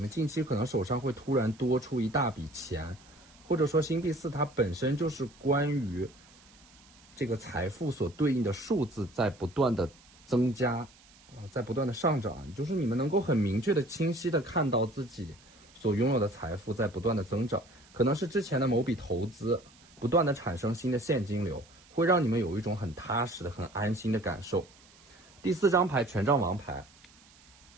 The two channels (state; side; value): noise; right; hiss, 26 dB below the sound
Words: 近期可能手上会突然多出一大笔钱，或者说星币4它本身就是关于这个财富所对应的数字在不断的增加在不断的上涨，就是你们能够很明确的、清晰的看到自己所拥有的财富在不断的增长，可能是之前的某笔投资不断的产生新的现金流，会让你们有一种很踏实的、很安心的感受。第4张牌权杖王牌，